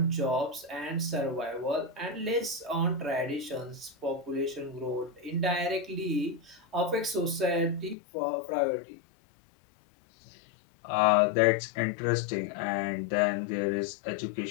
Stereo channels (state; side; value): drops out; right; at 8.0 s